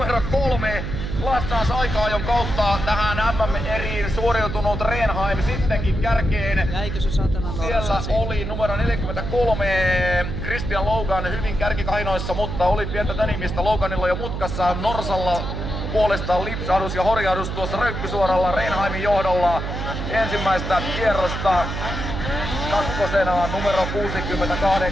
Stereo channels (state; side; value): noise; right; hum, 4 dB below the sound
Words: 3. Lassaas aika-ajon kautta tähän MM-eriin suoriutunut Rehnheim sittenkin kärkeen. Jäikö se satana Norsa? Siellä oli numero 43 Christian Logan hyvin kärkikainoissa, mutta oli pientä tänimistä Loganilla jo mutkassa. Norsalla puolestaan lipsahdus ja horjahdus tuossa röykkysuoralla Rehnheimin johdolla ensimmäistä kierrosta. Kakkosena numero